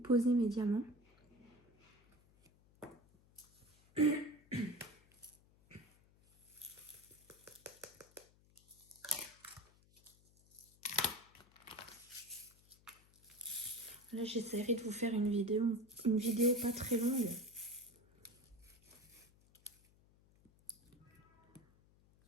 mes diamants. Là, j'essaierai de vous faire une vidéo pas très longue.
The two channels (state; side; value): noise; left; hum, 29 dB below the sound